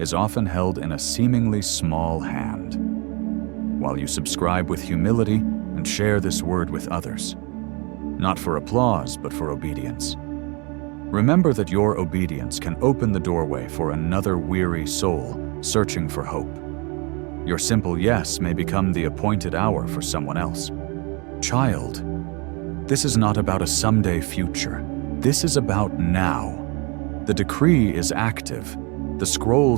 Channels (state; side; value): quieter; left; 30.4 dB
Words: often held in a seemingly small hand. While you subscribe with humility and share this word with others, not for applause, but for obedience. Remember that your obedience can open the doorway for another weary soul searching for hope. Your simple yes may become the appointed hour for someone else. Child, this is not about a someday future. This is about now. The decree is active. The